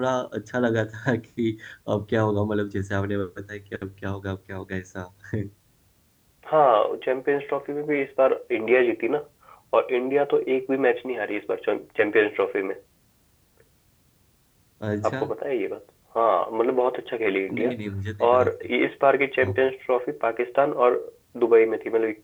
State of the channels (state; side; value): identical; both; correlation 1.00